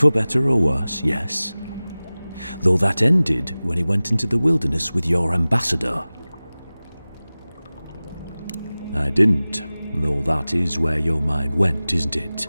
better or worse, yes. Though that ended when he went into the wilderness with your ambassador. I didn't, though that is where your mind went, isn't it?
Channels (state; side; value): inverted; both; correlation -0.98